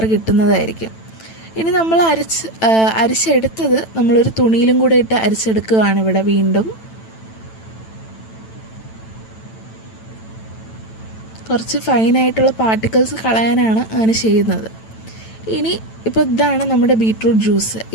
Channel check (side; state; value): right; late; 9.0 ms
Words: കിട്ടുന്നതായിരിക്കും. ഇനി നമ്മൾ അരിച്ചെടുത്തത് നമ്മളൊരു തുണിയിലും കൂടെ ഇട്ട് അരിച്ചെടുക്കുകയാണ് ഇവിടെ വീണ്ടും. കുറച്ച് ഫൈനായിട്ടുള്ള പാർട്ടിക്കിൾസ് കളയാനാണ് അങ്ങനെ ചെയ്യുന്നത്. ഇനി ഇപ്പോൾ ഇതാണ് നമ്മുടെ ബീട്രൂട്ട് ജ്യൂസ്.